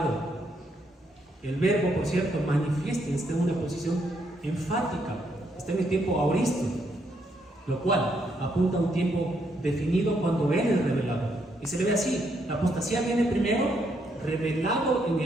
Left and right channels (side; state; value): both; normal; correlation 0.75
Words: El verbo, por cierto, manifiesta, está en una posición enfática, está en el tiempo aoristo, lo cual apunta a un tiempo definido cuando Él es revelado. Y se le ve así: la apostasía viene primero revelado en